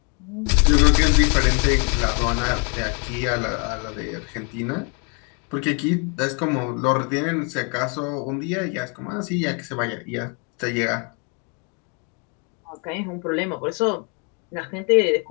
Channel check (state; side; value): quieter; right; 35.7 dB